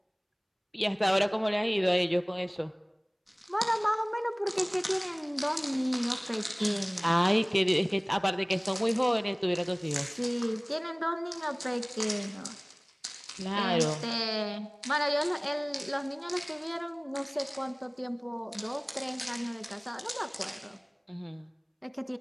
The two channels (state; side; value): identical; both; correlation 1.00